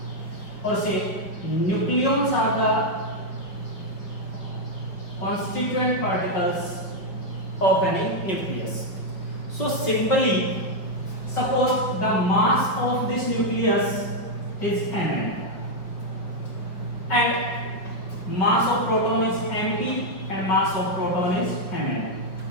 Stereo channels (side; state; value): right; late; 5.0 ms